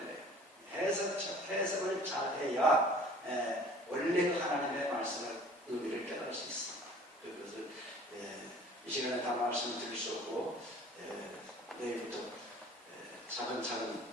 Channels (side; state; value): both; normal; correlation 0.49